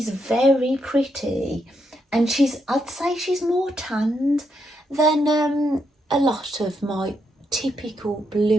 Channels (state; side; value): normal; both; correlation 0.80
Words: very pretty, and I'd say she's more tanned than a lot of my typical